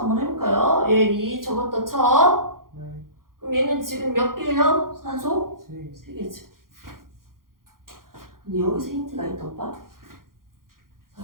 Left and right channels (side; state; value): left; late; 0.91 ms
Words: 한번 해볼까요? 얘 2 적었다 쳐. 그럼 얘는 지금 몇 개예요? 산소? 3개지. 근데 여기서 힌트가 있다, 오빠.